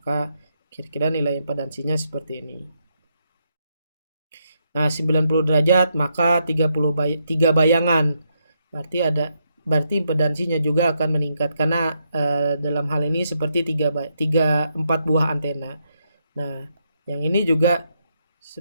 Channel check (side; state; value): both; inverted; correlation -0.79